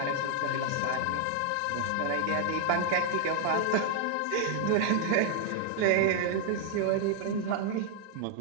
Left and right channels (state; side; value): different; both; correlation 0.00